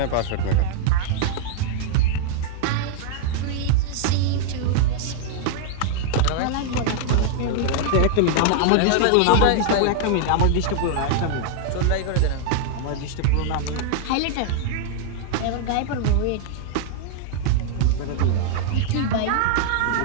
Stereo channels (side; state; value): both; different; correlation -0.01